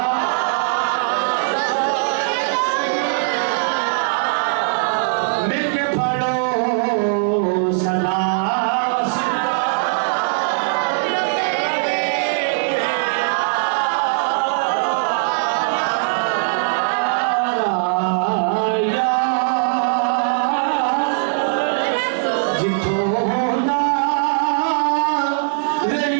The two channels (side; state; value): left; silent; 60 dB below the other